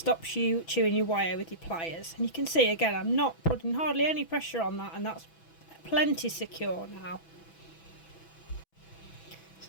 you chewing your wire with your pliers. And you can see again, I'm not putting hardly any pressure on that, and that's plenty secure now.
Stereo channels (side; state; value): right; late; 6.1 ms